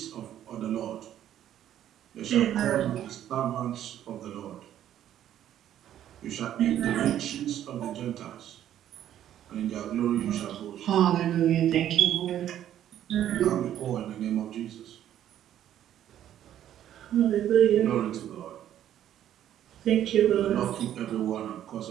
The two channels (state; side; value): quieter; left; 11.3 dB